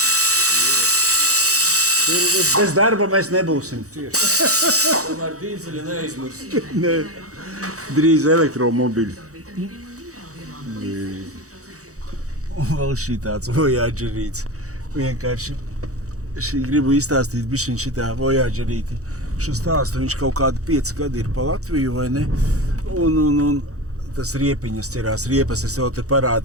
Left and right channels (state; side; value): late; left; 0.65 ms